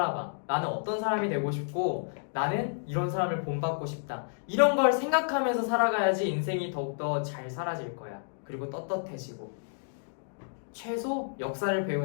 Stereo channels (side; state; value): right; silent; digital silence